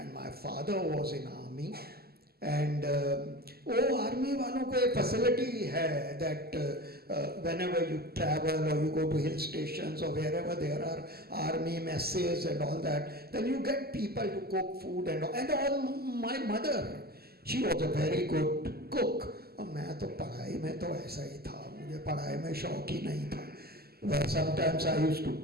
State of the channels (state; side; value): late; left; 0.45 ms